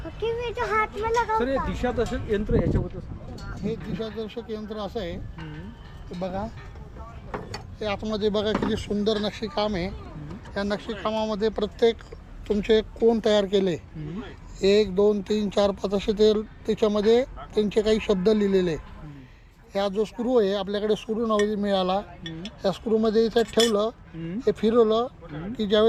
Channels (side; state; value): both; identical; correlation 1.00